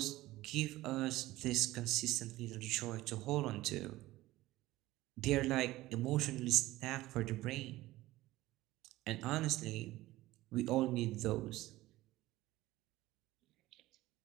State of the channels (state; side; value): quieter; left; 17.4 dB